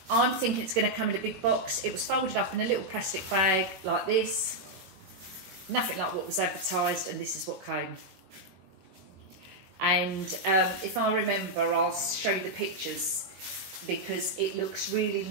I'm thinking it's going to come in a big box. It was folded up in a little plastic bag like this. Nothing like what was advertised, and this is what came. And if I remember, I'll show you the pictures because it looks really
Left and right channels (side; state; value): left; late; 22 ms